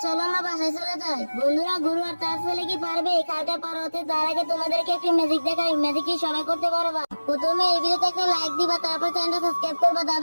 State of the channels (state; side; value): inverted; both; correlation -1.00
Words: চলো আমরা বাসায় চলে যাই। বন্ধুরা গুরু আর তার ছেলে কি পারবে এই খালটা পার হতে? তার আগে তোমাদেরকে একটি ম্যাজিক দেখাই। ম্যাজিক কি সবাই করতে পারবা? প্রথমে এই ভিডিওতে একটা লাইক দিবা, তারপর চ্যানেলটা সাবস্ক্রাইব করবা,